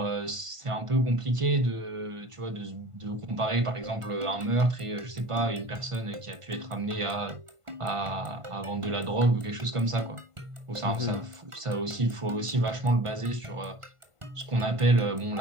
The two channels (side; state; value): left; late; 1.5 ms